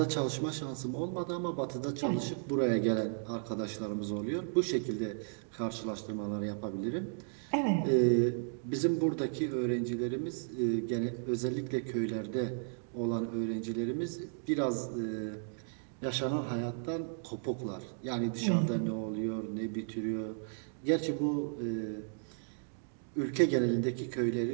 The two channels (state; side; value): silent; left; digital silence